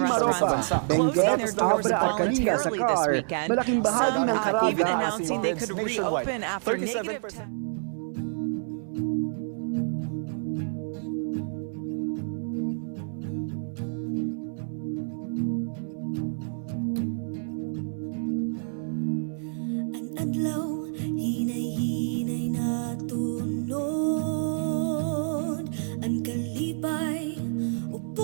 Benguet, Abra at Kalinga sa CAR. Malaking bahagi ng Caraga even at announcing they could reopen after negative 10. Adlaw, hinay-hinay na tunod. Ang kalipay,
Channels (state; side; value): silent; left; 59 dB below the other